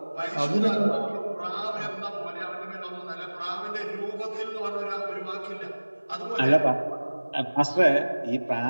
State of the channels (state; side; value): inverted; both; correlation -1.00